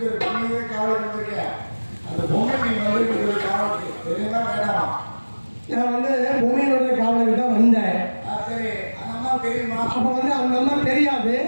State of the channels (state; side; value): inverted; both; correlation -1.00